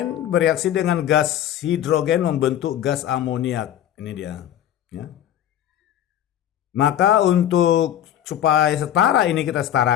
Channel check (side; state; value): right; quieter; 11.1 dB